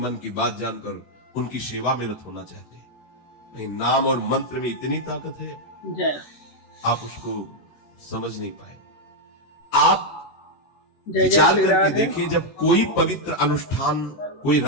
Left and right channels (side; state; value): right; late; 13 ms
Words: की बात जानकर उनकी सेवा में रत होना चाहते हैं। नहीं, नाम और मंत्र में इतनी ताकत है, जय आप उसको समझ नहीं पाए। आप जय जय विचार श्री करके राधे। देखिए, जब कोई पवित्र अनुष्ठान कोई